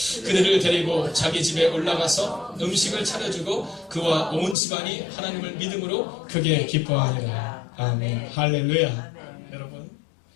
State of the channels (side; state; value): right; drops out; at 4.5 s